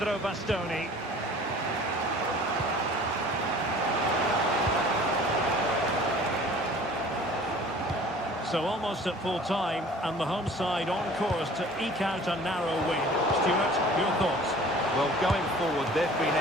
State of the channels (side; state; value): both; normal; correlation 0.47